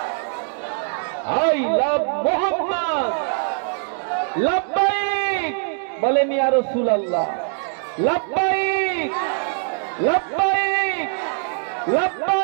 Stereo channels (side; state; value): left; silent; 64 dB below the other